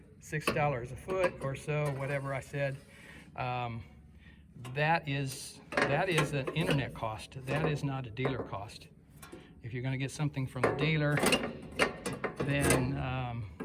$6 a foot or so, whatever I said, that is an internet cost. That is not a dealer cost. If you're going to get something from the dealer, then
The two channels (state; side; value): identical; both; correlation 1.00